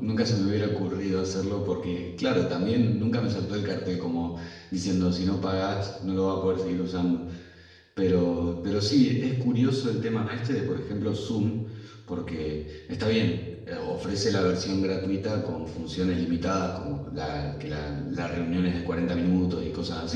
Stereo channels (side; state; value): both; identical; correlation 1.00